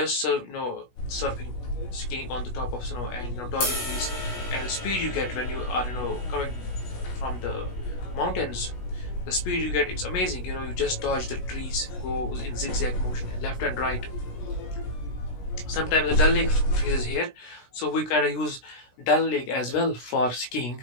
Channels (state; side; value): late; right; 16 ms